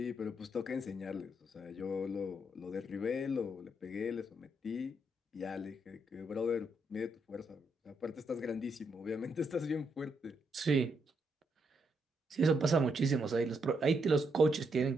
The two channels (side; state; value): both; normal; correlation 0.78